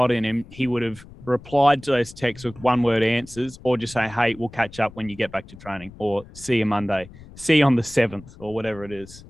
in him, he would have replied to those texts with one-word answers, or just say, hey, we'll catch up when you get back to training, or see you Monday, see you on the 7th, or whatever it is.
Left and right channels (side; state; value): left; noise; rumble, 19 dB below the sound